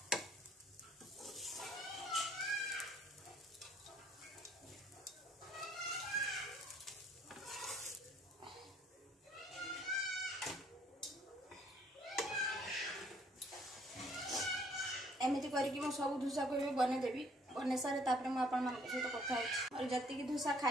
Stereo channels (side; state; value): both; normal; correlation 0.62